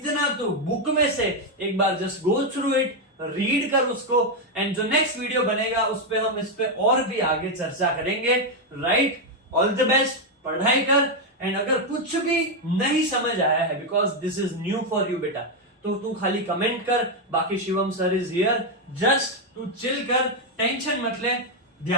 तो बुक में से एक बार just go through it, read कर उसको, एंड जो नेक्स्ट वीडियो बनेगा उस पे हम इस पे और भी आगे चर्चा करेंगे। राइट, ऑल द बेस्ट, पढ़ाई कर। एंड अगर कुछ भी नहीं समझ आया है, because this is new for you बेटा, तो तू खाली कमेंट कर, बाकी Shivam sir is here, just तू चिल कर, टेंशन मत ले,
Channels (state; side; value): normal; both; correlation 0.03